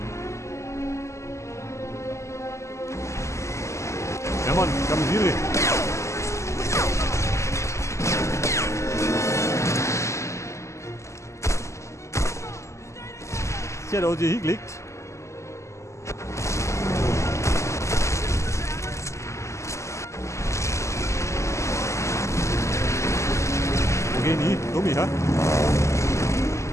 Ja Mann, Kamisiere. Sie hat auch hier hingelegt. Wo gehen die? Dummi, ha?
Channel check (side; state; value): right; late; 0.14 ms